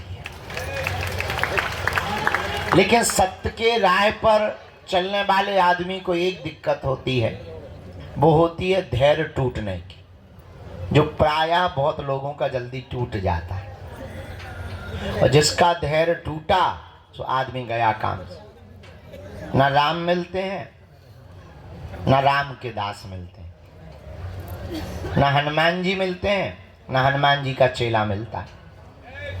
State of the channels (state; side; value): identical; both; correlation 1.00